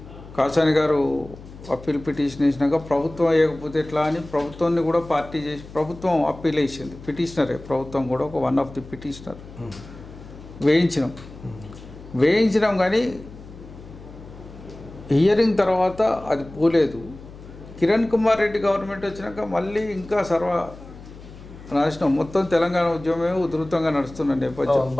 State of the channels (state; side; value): noise; left; hum, 17 dB below the sound